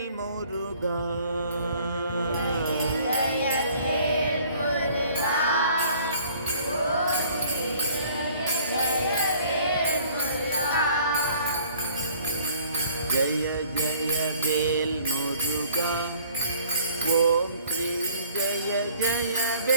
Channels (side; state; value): both; inverted; correlation -0.55